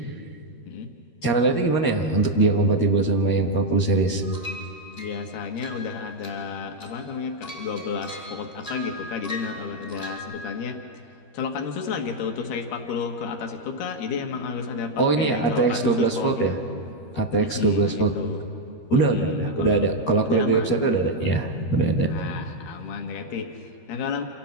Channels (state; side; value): late; right; 13 ms